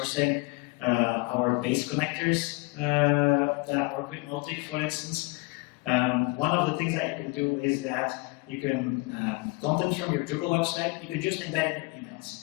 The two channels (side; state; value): right; quieter; 26.4 dB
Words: our base connectors that work with Motic, for instance. One of the things that you can do is that you can, content from your Drupal website, you can just embed in your